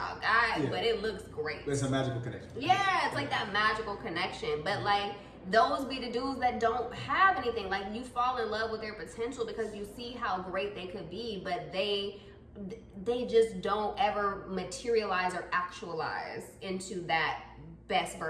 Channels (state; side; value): identical; both; correlation 1.00